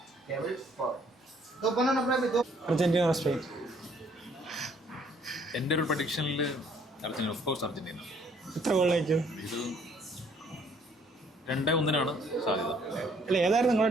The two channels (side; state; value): both; normal; correlation 0.63